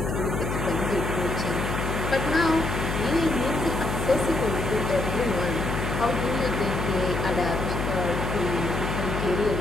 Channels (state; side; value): noise; left; hum, 3 dB below the sound